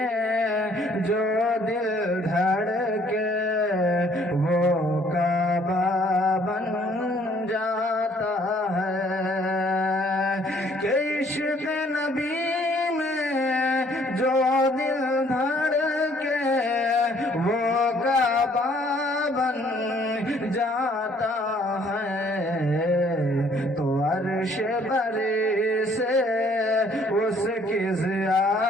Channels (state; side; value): normal; both; correlation 0.61